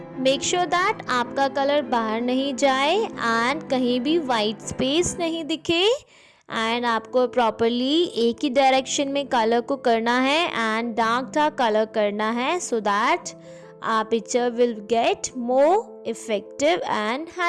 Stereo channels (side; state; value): both; identical; correlation 1.00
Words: Make sure that आपका colour बाहर नहीं जाए and कहीं भी white space नहीं दिखे and आपको properly एक ही डायरेक्शन में कलर को करना है एंड डार्क कलर करना है so that our picture will get more effective and